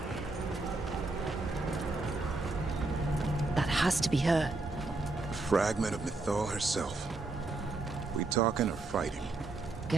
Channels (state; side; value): quieter; left; 3.3 dB